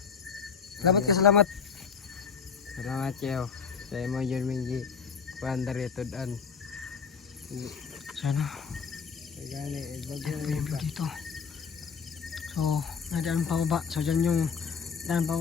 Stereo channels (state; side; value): quieter; right; 6.2 dB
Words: Salamat ka, salamat. Salamat siyo. Sa imo yun mingi. Kuandar ito daan. Sana. Gani, bago Ito yung view dito. So, may daan pababa. So, dyan yung daan